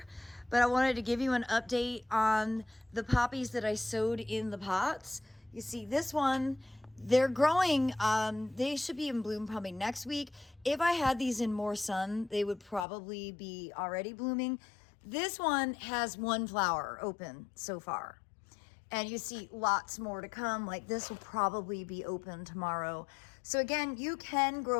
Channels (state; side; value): drops out; right; at 12.9 s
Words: but I wanted to give you an update on the poppies that I sowed in the pots. You see this one, they're growing. They should be in bloom probably next week. If I had these in more sun, they would probably be already blooming. This one has one flower open so far. And you see lots more to come. Like this will probably be open tomorrow. So again, you can